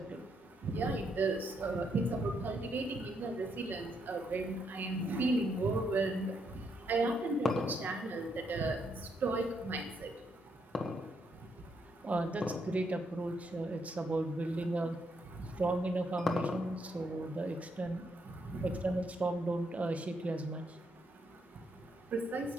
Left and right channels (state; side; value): normal; both; correlation 0.76